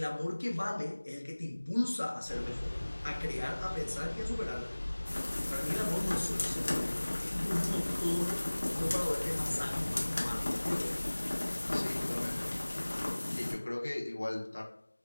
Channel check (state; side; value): inverted; both; correlation -1.00